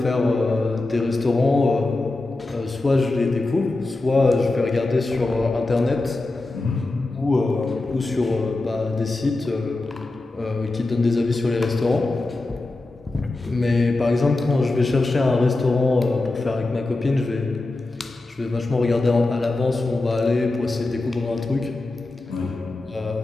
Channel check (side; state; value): right; quieter; 3.1 dB